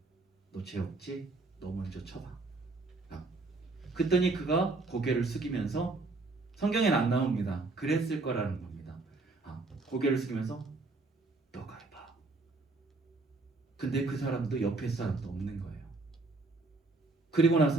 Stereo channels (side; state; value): left; quieter; 3.4 dB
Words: 너 죄 없지? 너 먼저 쳐봐. 그랬더니 그가 고개를 숙이면서, 성경엔 안 나옵니다. 그랬을 거라는 겁니다. 고개를 숙이면서 너가 해봐. 근데 그 사람도 옆에 사람도 없는 거예요. 그리고